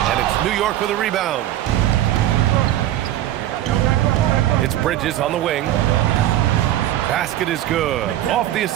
And it's New York with a rebound. It's Bridges on the wing. Basket is good. Off the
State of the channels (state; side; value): quieter; left; 13.1 dB